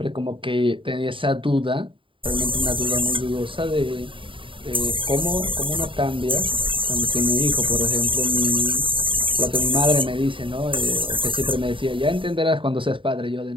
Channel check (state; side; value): late; left; 0.25 ms